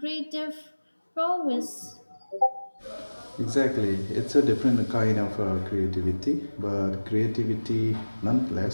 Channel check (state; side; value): inverted; both; correlation -1.00